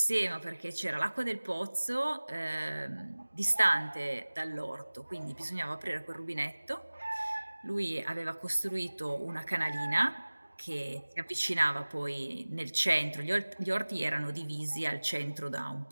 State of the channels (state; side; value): inverted; both; correlation -1.00